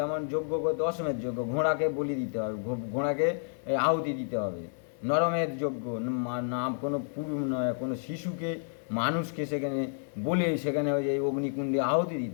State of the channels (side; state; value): right; silent; digital silence